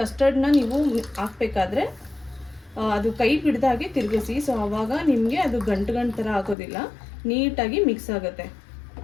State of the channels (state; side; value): drops out; right; at 6.6 s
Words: ನೀವು ಹಾಕಬೇಕಾದ್ರೆ ಅದು ಕೈ ಬಿಡ್ದಾಗೆ ತಿರುಗಿಸಿ. ಸೊ ಆವಾಗ ನಿಮಗೆ ಅದು ಗಂಟು ಥರ ಆಗೋದಿಲ್ಲ, ನೀಟಾಗಿ ಮಿಕ್ಸ್ ಆಗುತ್ತೆ.